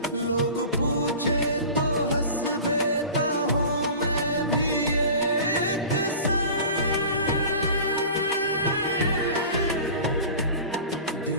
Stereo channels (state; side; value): inverted; both; correlation -0.37